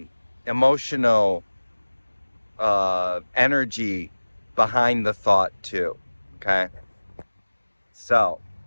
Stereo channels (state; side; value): inverted; both; correlation -1.00